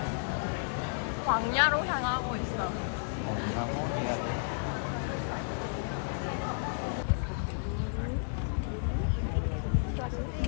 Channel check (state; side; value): silent; right; digital silence